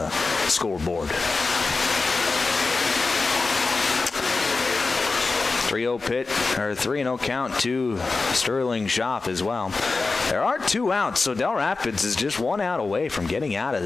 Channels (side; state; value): right; quieter; 3.9 dB